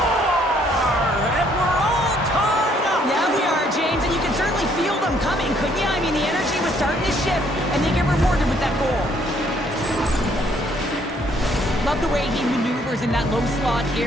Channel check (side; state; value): both; normal; correlation 0.66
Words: And we're all tied up. Yeah, we are, James, and you can certainly feel them coming, couldn't you? I mean, the energy was starting to shift, and they get rewarded with that goal. Love the way he maneuvers in that low slot